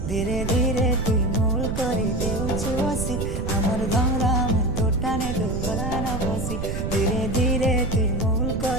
ধীরে ধীরে তুই মোল করে দেউଛୁ হসি আমার ধমরা মন তোটানে তো গলা না বসি ধীরে ধীরে তুই মোল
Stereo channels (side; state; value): right; noise; rumble, 3 dB below the sound